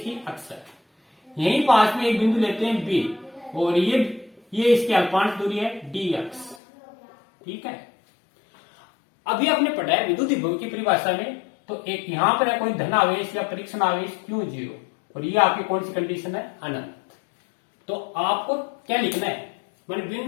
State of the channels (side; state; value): right; drops out; at 6.6 s